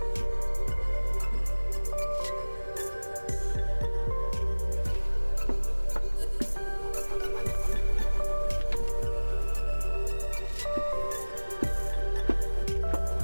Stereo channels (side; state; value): both; inverted; correlation -1.00